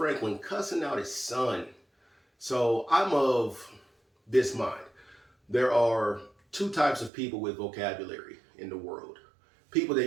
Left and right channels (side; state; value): left; drops out; at 7.1 s